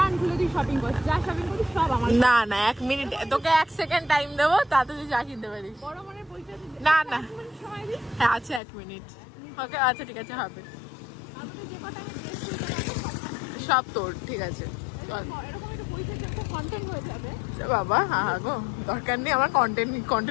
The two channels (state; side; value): drops out; right; at 8.6 s